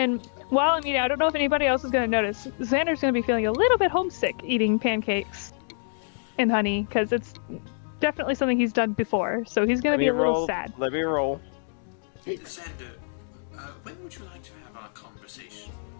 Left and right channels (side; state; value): right; silent; digital silence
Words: while I'm eating, I don't know if anybody else is gonna notice, Xander's gonna be feeling a little bit homesick eating pancakes and honey, because it's definitely something he's done before, so he's gonna be a little sad. Let me roll. Xander, when would you like to have our conversation